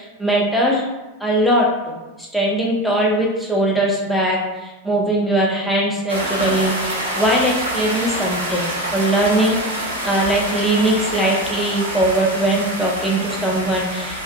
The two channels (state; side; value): normal; both; correlation 0.27